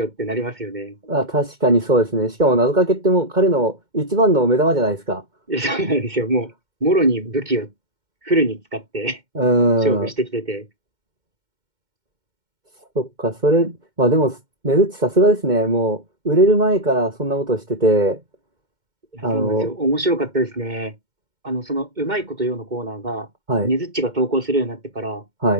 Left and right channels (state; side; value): late; left; 2.1 ms